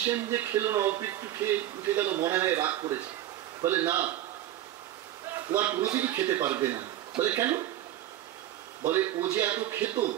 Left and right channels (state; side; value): quieter; left; 13.2 dB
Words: যে খেলো না, অল্প একটু খেয়ে উঠে গেল, মনে হয় রাগ করেছে। বলে না, ও আর কোনোদিনই খেতে পারবে না। বলে কেন? বলে ও যে এত খেত,